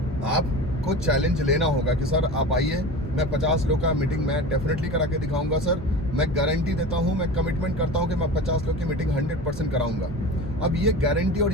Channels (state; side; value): normal; both; correlation 0.32